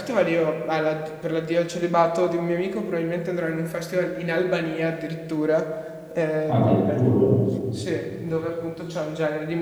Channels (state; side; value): identical; both; correlation 1.00